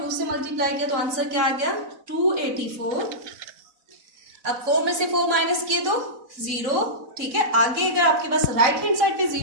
से मल्टीप्लाई किया तो आंसर क्या आ गया 284। अब 4 में से 4 माइनस किए तो 0। ठीक है, आगे अगर आपके पास राइट हैंड साइड पे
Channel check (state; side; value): late; left; 4.0 ms